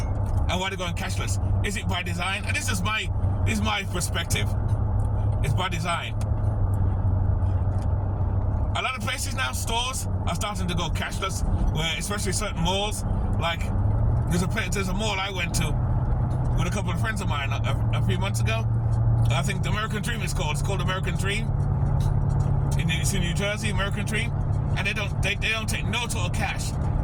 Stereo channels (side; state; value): both; identical; correlation 1.00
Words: why they're going cashless? Is it by design? And this is my perspective. It's by design. A lot of places now, stores are starting to go cashless, where especially certain malls, like there's a mall I went to with a couple of friends of mine a few months ago. I think the American Dream is called. It's called American Dream. It's in New Jersey, American Dream, and they don't take no total cash,